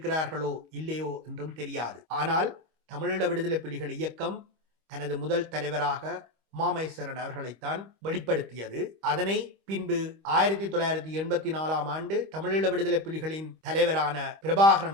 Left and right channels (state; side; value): late; left; 25 ms